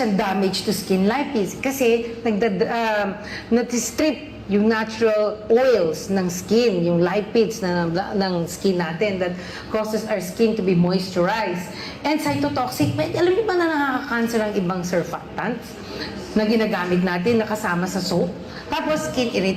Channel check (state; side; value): identical; both; correlation 1.00